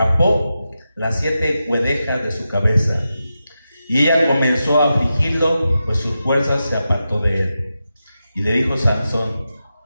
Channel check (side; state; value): both; inverted; correlation -0.90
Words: las 7 guedejas de su cabeza. Y ella comenzó a afligirlo, pues sus fuerzas se apartó de él. Y le dijo Sansón: